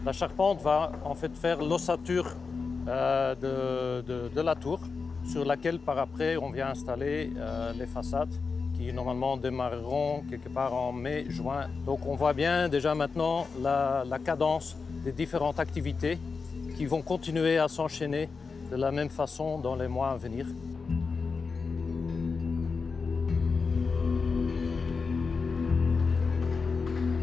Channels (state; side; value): quieter; right; 4.8 dB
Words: La charpente va en fait faire l'ossature de la tour sur laquelle par après on vient installer les façades qui normalement démarreront quelque part en mai-juin. Donc on voit bien déjà maintenant la cadence des différentes activités qui vont continuer à s'enchaîner de la même façon dans les mois à venir.